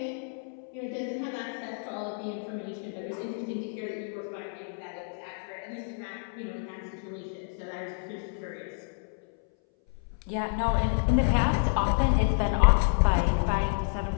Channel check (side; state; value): right; silent; 58 dB below the other